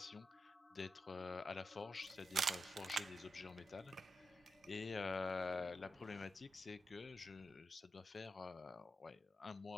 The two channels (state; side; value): normal; both; correlation 0.87